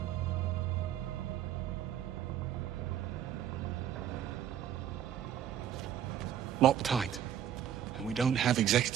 Locked tight. And we don't have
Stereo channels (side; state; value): left; quieter; 10.3 dB